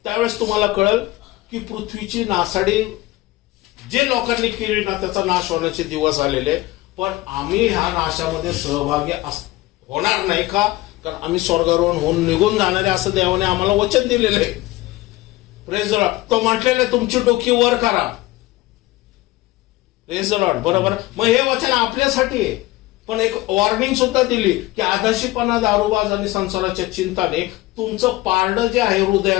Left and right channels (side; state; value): right; quieter; 18.3 dB